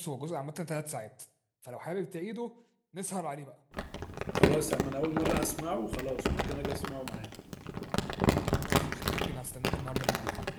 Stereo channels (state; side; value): identical; both; correlation 1.00